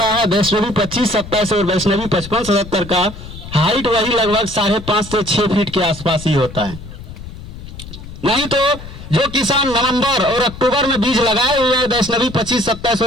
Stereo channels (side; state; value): left; noise; rumble, 13 dB below the sound